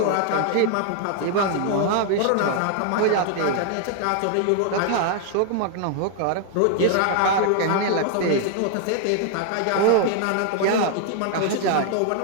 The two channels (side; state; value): both; different; correlation 0.00